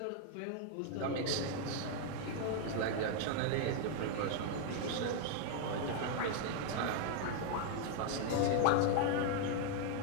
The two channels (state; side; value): different; both; correlation 0.00